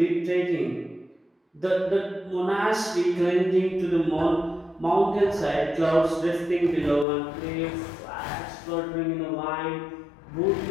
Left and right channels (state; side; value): drops out; right; at 7.1 s